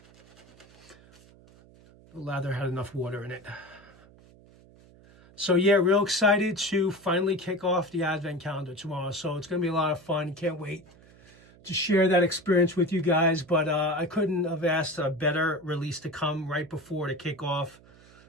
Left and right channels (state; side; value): noise; right; hum, 25 dB below the sound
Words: The lather had enough water in it. So yeah, real excited to finally kick off the Advent Calendar tomorrow. So it's going to be a lot of fun. Can't wait to share that experience with you guys. But I couldn't have asked a better release to come right before the kickoff.